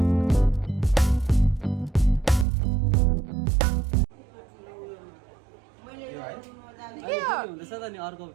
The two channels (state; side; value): drops out; left; at 2.5 s